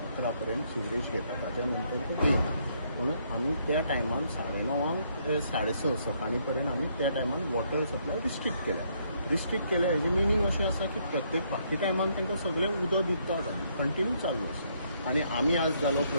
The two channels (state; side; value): inverted; both; correlation -0.71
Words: पर्यंत सिवरेज घेता. ताच्या नंतर तो घेयना. म्हणून आमी त्या टायमान 9:30 6:30 सकाळी पर्यंत आमी त्या टायमान वॉटर सप्लाय रिस्ट्रिक्ट केल्या हेजें मिनींग अशें आसा की प्रत्येक बाकी टायमान तांकां सगळें उदक दितात आनी कंटिन्यू चालू आसा. आनी आमी आज जालो